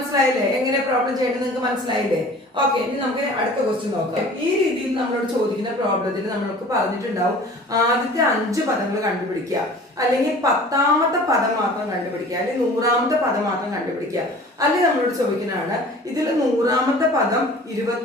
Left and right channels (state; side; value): normal; both; correlation 0.45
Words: എങ്ങനെ പ്രോബ്ലം ചെയ്യേണ്ടത് നിങ്ങൾക്ക് മനസ്സിലായില്ലേ? ഓക്കെ. ഇനി നമുക്ക് അടുത്ത ക്വസ്റ്റ്യൻ നോക്കാം. ഈ രീതിയിൽ നമ്മളോട് ചോദിക്കുന്ന പ്രോബ്ലത്തിൽ നമ്മൾക്ക് പറഞ്ഞിട്ടുണ്ടാവും ആദ്യത്തെ 5 പദങ്ങൾ കണ്ടുപിടിക്കുക, അല്ലെങ്കിൽ 10ാമത്തെ പദം മാത്രം കണ്ടുപിടിക്കുക, അല്ലെങ്കിൽ 100ാമത്തെ പദം മാത്രം കണ്ടുപിടിക്കുക. അല്ലെങ്കിൽ നമ്മളോട് ചോദിക്കുന്നതാണ് ഇതിൽ 100ാമത്തെ പദം